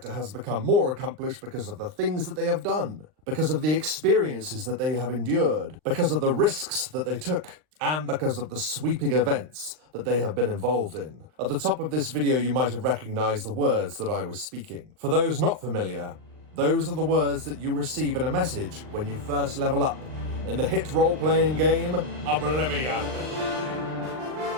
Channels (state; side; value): late; left; 39 ms